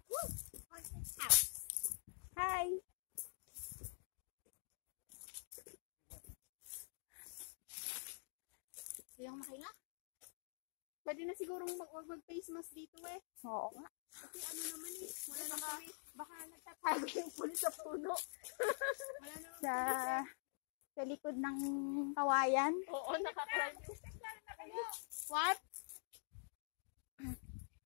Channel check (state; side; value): silent; right; digital silence